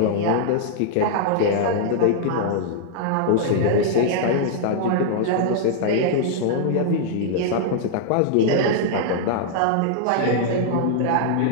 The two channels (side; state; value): both; different; correlation -0.01